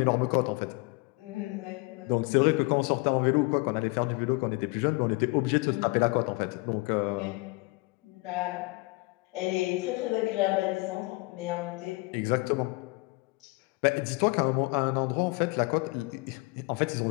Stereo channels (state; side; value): quieter; right; 25.2 dB